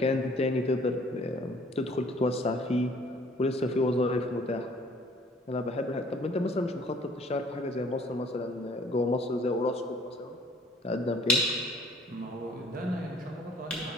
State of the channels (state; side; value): normal; both; correlation 0.57